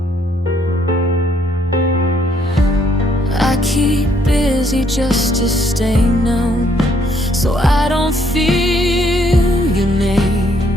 I keep busy just to stay numb, so I don't feel your name.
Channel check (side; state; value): both; normal; correlation 0.68